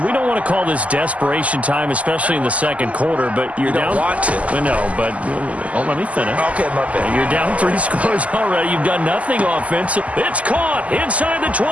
we don't want to call this desperation time, especially in the 2nd quarter, but you're down. You don't want to. No, but let me finish. Okay, my bad. You're down 3 scores already. You've done nothing offensive. It's caught inside the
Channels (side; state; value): left; late; 0.069 ms